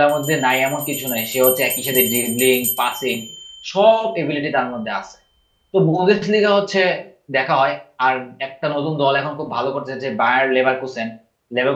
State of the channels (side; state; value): both; identical; correlation 1.00